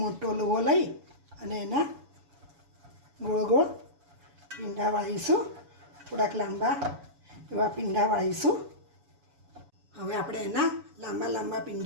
લુવો લઈ અને એના ગોળ ગોળ પીંડા વાળીશું, થોડાક લાંબા એવા પીંડા વાળીશું. હવે આપણે એના લાંબા લાંબા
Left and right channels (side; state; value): left; late; 7.0 ms